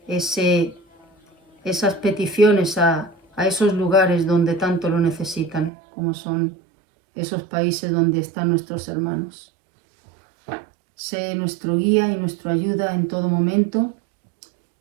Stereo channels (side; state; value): left; drops out; at 5.7 s